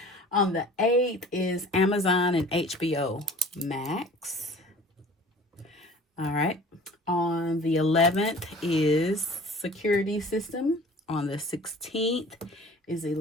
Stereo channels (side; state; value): both; normal; correlation 0.46